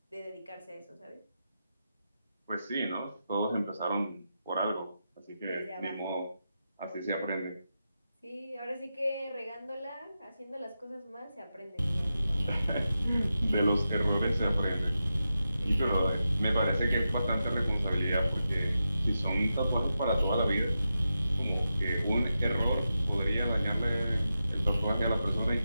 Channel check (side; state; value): both; inverted; correlation -0.89